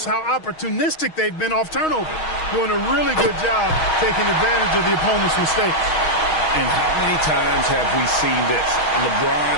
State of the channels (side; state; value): right; late; 6.3 ms